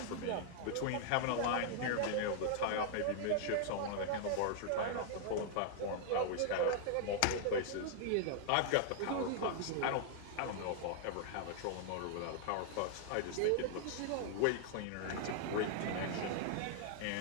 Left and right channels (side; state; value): both; different; correlation -0.01